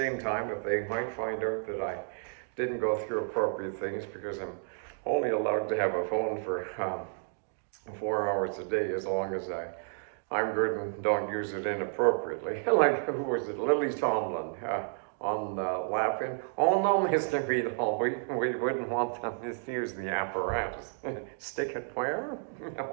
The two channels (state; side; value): silent; left; 57 dB below the other